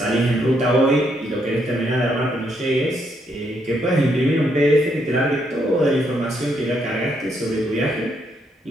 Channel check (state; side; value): normal; both; correlation 0.75